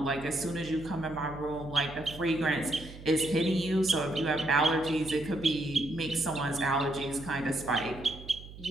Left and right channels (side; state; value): right; noise; hum, 15 dB below the sound